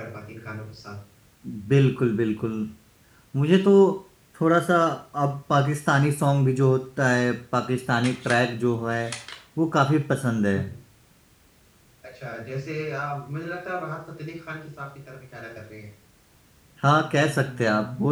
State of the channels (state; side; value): identical; both; correlation 1.00